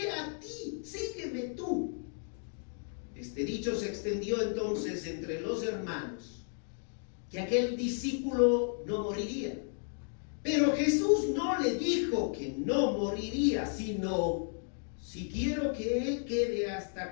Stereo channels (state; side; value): silent; right; 55 dB below the other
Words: a ti? Sígueme tú. Este dicho se extendió entonces entre los hermanos, que aquel discípulo no moriría. Pero Jesús no le dijo que no moriría, sino: si quiero que él quede